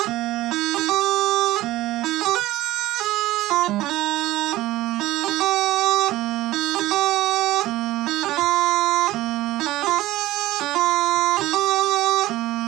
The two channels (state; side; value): quieter; left; 16.5 dB